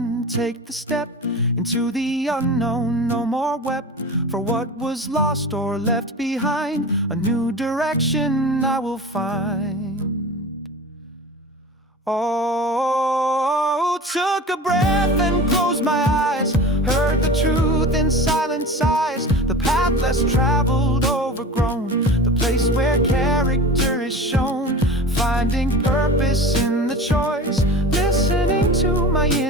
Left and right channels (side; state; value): both; normal; correlation 0.34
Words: take the step into the unknown. No more wept for what was lost or left behind. A new direction I will find. Oh, took a breath and closed my eyes, heard the truth in silent sighs. The path less traveled, overgrown, the place where character is shown. Finding purpose in the choice, listening to my